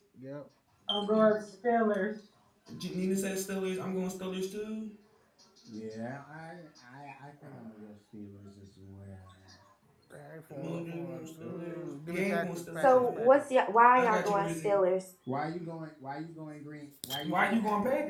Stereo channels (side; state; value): both; identical; correlation 1.00